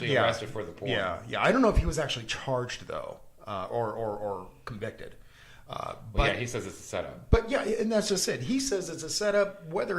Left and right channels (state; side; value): identical; both; correlation 1.00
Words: arrested for the porn. Yeah. I don't know if he was actually charged though, or convicted. But he says it's a setup. But yeah, and that's just it. He says it's a setup.